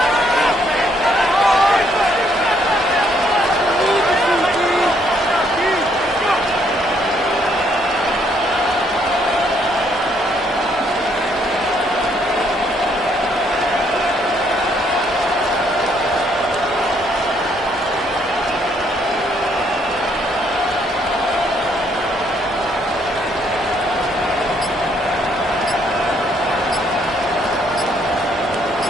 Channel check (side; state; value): both; normal; correlation 0.69